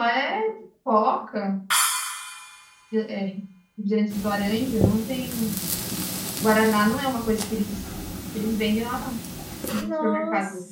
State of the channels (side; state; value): both; identical; correlation 1.00